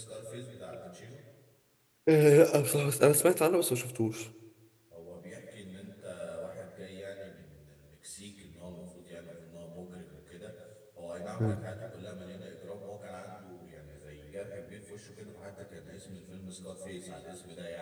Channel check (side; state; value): both; identical; correlation 1.00